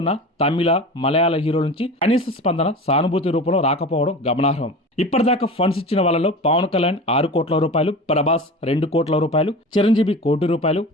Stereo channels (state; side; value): normal; both; correlation 0.33